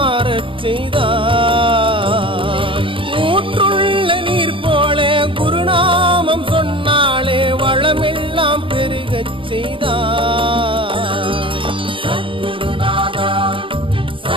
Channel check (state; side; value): late; left; 0.25 ms